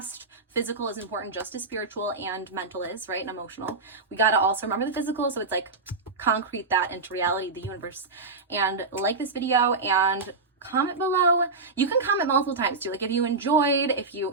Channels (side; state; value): left; quieter; 3.9 dB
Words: Physical is important just as spiritual and mental is, right? And emotional. We got to also remember the physical. So it's like concrete that into reality, the universe. And like this video and comment below. You can comment multiple times too. Like if you enjoyed,